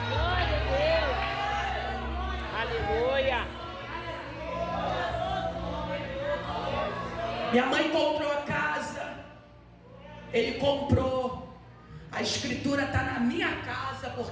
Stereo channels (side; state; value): both; identical; correlation 1.00